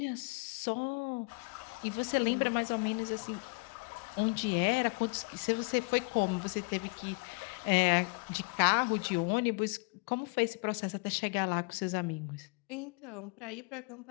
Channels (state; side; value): quieter; right; 31.8 dB